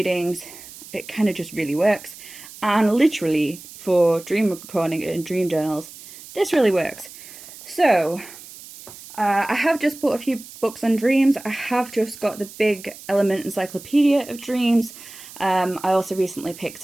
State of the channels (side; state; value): right; noise; hiss, 17 dB below the sound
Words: it kind of just really works. And literally for dream recording and dream journals, this really works. So I have just bought a few books on dreams. I have just got the big Element Encyclopedia of Dreams. I also recently